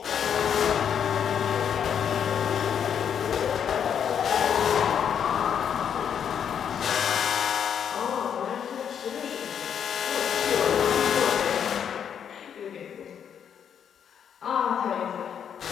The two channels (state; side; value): quieter; right; 8.2 dB